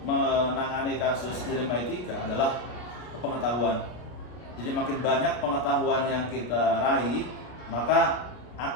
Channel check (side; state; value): right; late; 33 ms